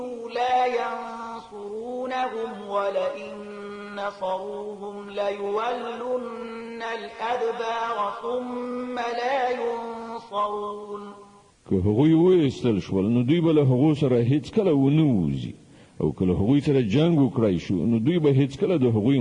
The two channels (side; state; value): both; identical; correlation 1.00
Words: لا ينصرونهم ولئن نصروهم ليولن الأدبار ثم لا ينصرون. که هغوی وایستل شول نو دوی به له هغو سره هیڅ کله ونه وځي او که له هغوی سره جنګ وکړای شو نو دوی به هیڅ کله د هغوی